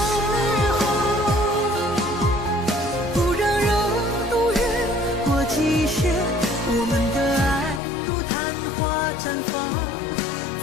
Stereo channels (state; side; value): drops out; right; at 7.8 s